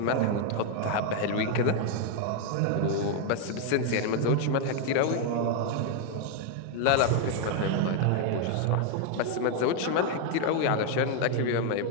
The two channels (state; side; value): different; both; correlation 0.01